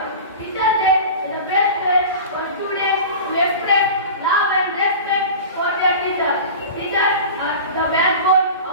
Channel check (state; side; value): inverted; both; correlation -0.34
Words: Teachers' Day is the best way for students to express love and respect for their teachers. Teachers are the backbone